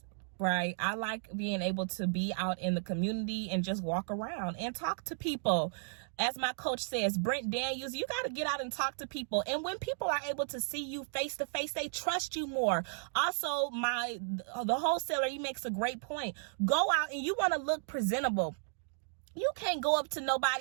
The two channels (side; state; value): left; silent; digital silence